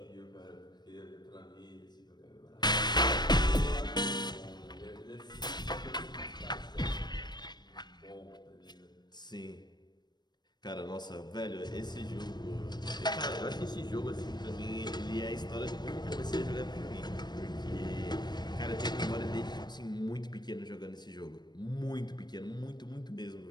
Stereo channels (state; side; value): late; right; 0.21 ms